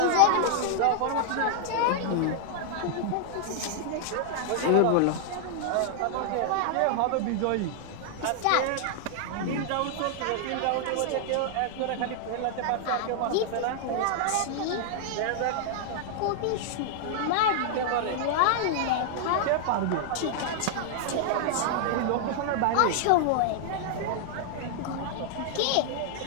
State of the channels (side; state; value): both; different; correlation -0.01